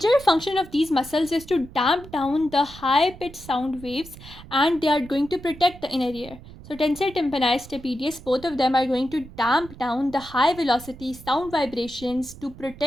function of these muscles is to damp down the high pitched sound waves, and they are going to protect the inner ear. So tensor tympani, stapedius, both of them are going to damp down the high velocity sound vibrations to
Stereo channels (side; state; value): right; noise; rumble, 17 dB below the sound